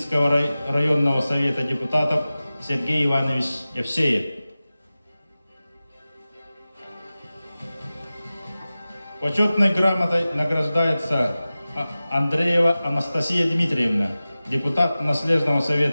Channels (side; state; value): both; inverted; correlation -0.96